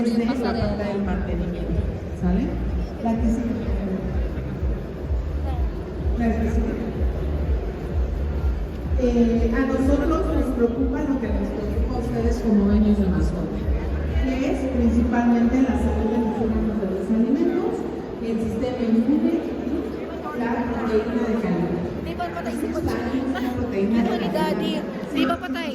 desde la pasarela. parte del mantenimiento, ¿sale? La que sigue. La que sigue. A nosotros nos preocupa lo que les preocupa a ustedes como dueños de mascota, que es principalmente la salud de los órganos de los alimentos, el sistema inmune y la proteína de calidad. Di ba patay si Pochi? Una proteína Ito de ni Daddy. Di ba patay?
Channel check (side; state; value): both; identical; correlation 1.00